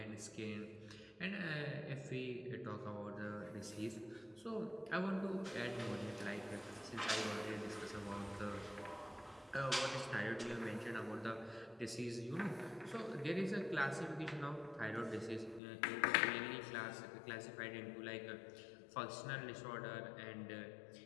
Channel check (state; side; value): drops out; right; at 15.6 s